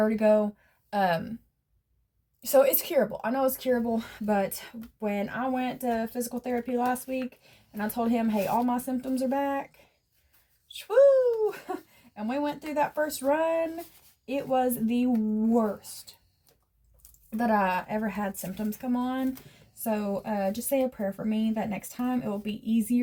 So it's curable. I know it's curable, but when I went to physical therapy last week and I told him, hey, all my symptoms are back, woo, and we went through that first run, it was the worst that I ever had symptoms come on. So just say a prayer for me that next time it will be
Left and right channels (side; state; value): both; identical; correlation 1.00